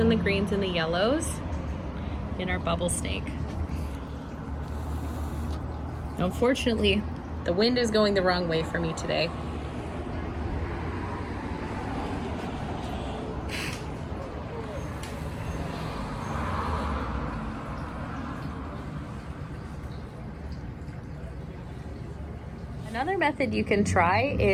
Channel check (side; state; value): both; identical; correlation 1.00